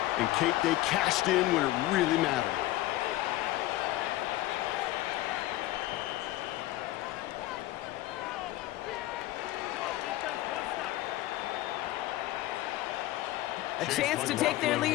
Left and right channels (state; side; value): quieter; right; 16.4 dB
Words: and Kate, they cashed in when it really mattered. A chance to take their